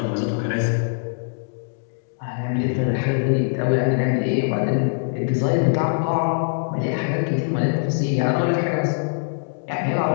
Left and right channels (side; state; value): right; silent; digital silence